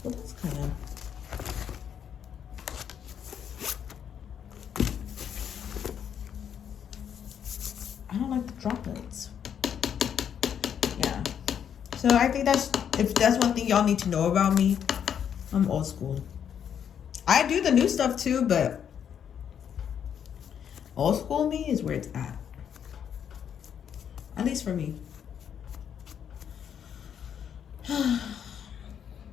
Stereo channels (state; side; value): quieter; right; 8.5 dB